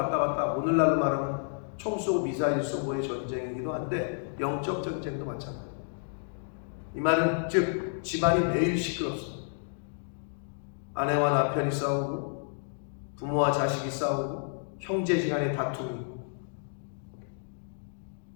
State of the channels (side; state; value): right; silent; digital silence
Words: 갔다, 오늘날로 말하면 총 쏘고 미사일 쏘고의 전쟁이기도 한데 영적 전쟁도 마찬가지입니다. 이 말은 즉 집안이 매일 시끄럽습니다. 아내와 남편이 싸우고 부모와 자식이 싸우고 형제지간의 다툼이,